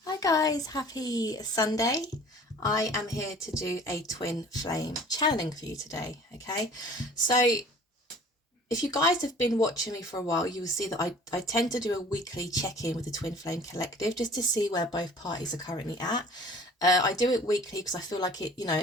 Hi guys, happy Sunday. I am here to do a twin flame channeling for you today, okay? So if you guys have been watching me for a while, you will see that I tend to do a weekly check-in with the Twin Flame Collective just to see where both parties are currently at. I do it weekly because I feel like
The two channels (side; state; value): both; normal; correlation 0.48